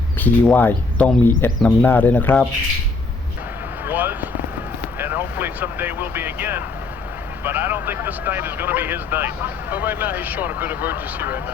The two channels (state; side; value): quieter; right; 3.8 dB